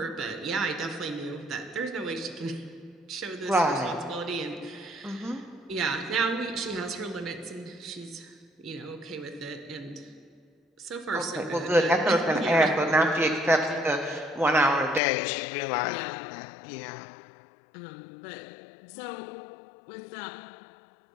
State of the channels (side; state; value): right; drops out; at 15.0 s